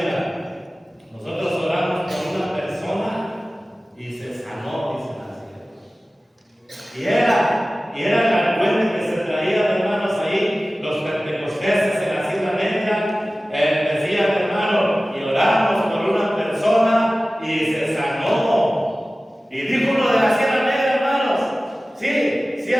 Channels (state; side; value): normal; both; correlation 0.97